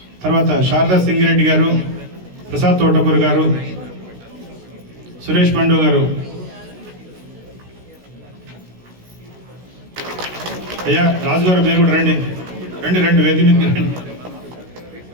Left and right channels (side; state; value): left; late; 16 ms